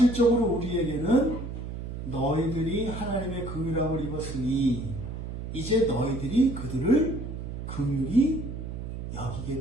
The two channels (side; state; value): right; noise; hum, 7 dB below the sound